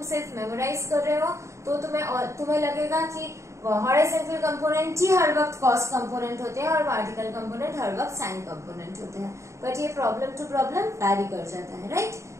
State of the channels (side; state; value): left; late; 0.14 ms